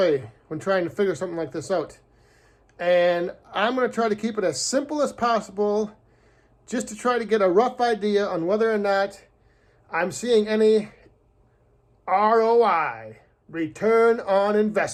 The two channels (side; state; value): both; identical; correlation 1.00